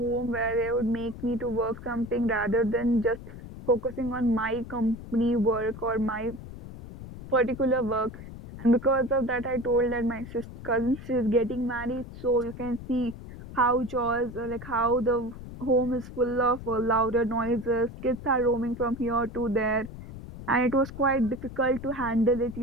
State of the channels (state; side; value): noise; left; rumble, 13 dB below the sound